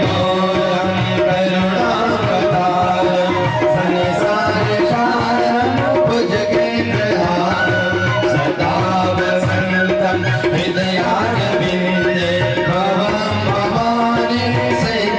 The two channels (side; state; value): both; identical; correlation 1.00